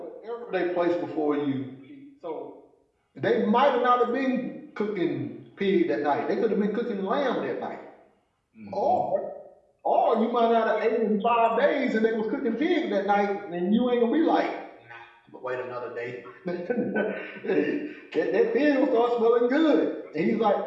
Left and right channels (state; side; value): identical; both; correlation 1.00